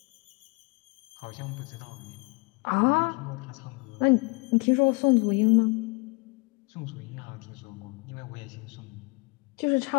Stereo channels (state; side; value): quieter; right; 28.8 dB